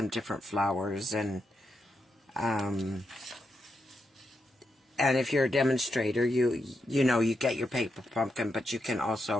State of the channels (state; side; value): normal; both; correlation 0.84